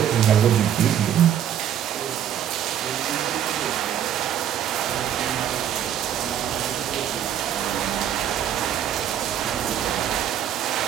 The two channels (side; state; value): left; quieter; 10.0 dB